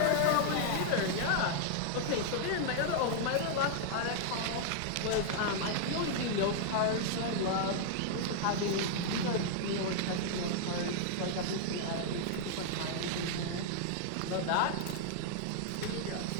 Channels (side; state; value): both; different; correlation -0.01